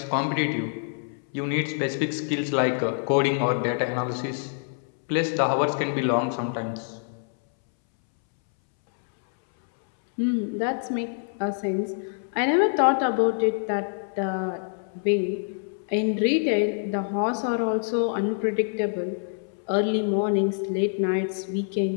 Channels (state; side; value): silent; right; 61 dB below the other